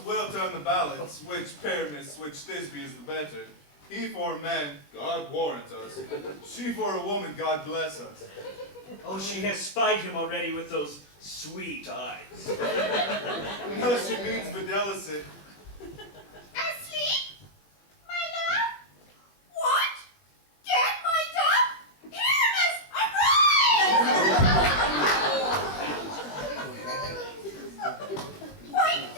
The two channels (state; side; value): late; right; 20 ms